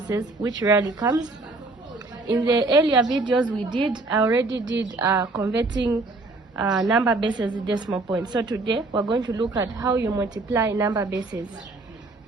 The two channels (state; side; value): quieter; left; 3.2 dB